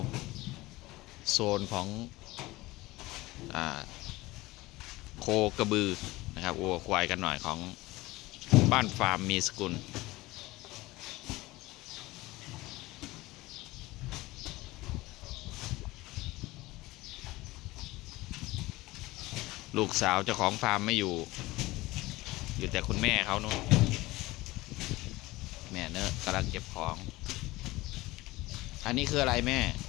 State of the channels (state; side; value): quieter; right; 19.7 dB